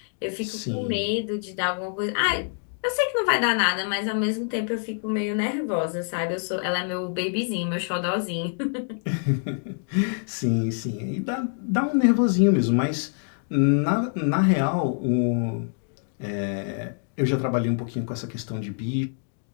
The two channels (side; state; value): right; silent; 61 dB below the other